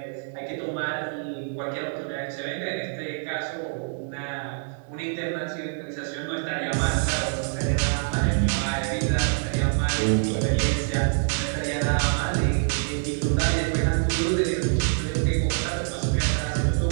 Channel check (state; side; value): silent; left; 61 dB below the other